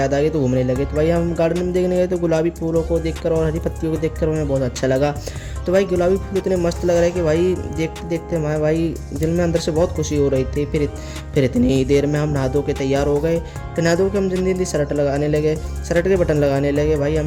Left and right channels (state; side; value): identical; both; correlation 1.00